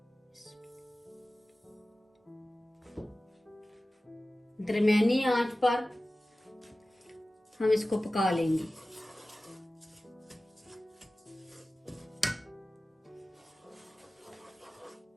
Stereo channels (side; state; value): both; normal; correlation 0.96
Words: दरमियानी आंच पर हम इसको पका लेंगे।